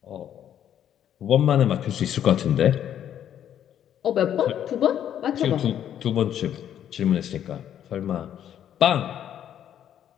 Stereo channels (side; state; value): right; quieter; 10.1 dB